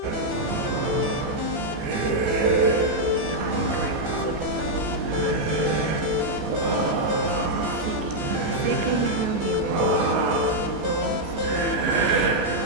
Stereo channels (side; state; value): left; late; 14 ms